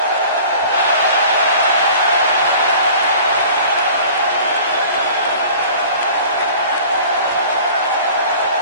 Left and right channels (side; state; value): both; inverted; correlation -0.45